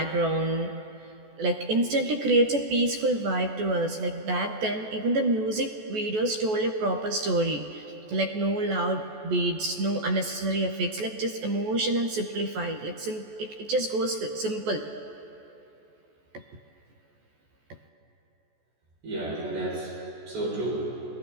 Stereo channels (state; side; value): late; left; 14 ms